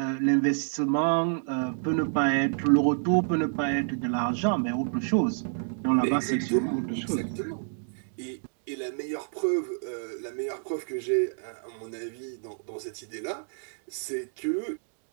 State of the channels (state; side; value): silent; left; digital silence